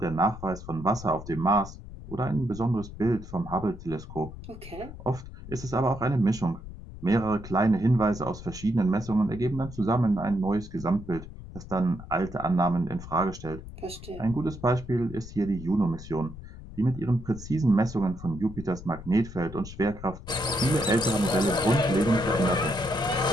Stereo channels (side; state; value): left; noise; rumble, 13 dB below the sound